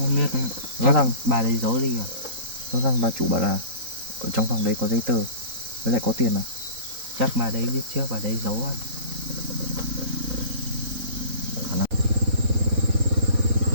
biết. Rõ ràng bà đấy giấu đi à? rõ ràng bà chủ bảo là ở trong phòng đấy có giấy tờ với lại có tiền à? Chắc bà đấy biết trước, bà đấy giấu anh.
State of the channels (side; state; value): left; late; 3.9 ms